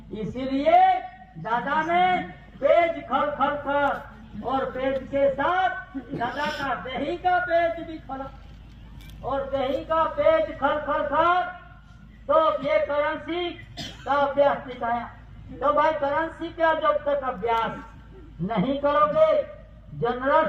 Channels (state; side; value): identical; both; correlation 1.00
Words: इसीलिए दादा ने पेज खल खल कर और पेज के साथ दादा का दही का पेज भी खोला और दही का पेज खल खल कर तो ये करेंसी का अभ्यास सिखाया। तो भाई करेंसी का जब तक अभ्यास नहीं करोगे, जनरल